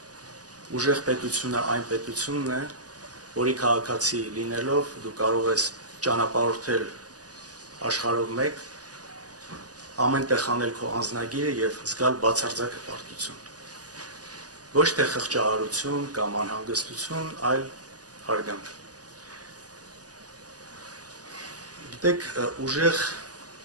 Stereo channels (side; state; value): left; late; 0.67 ms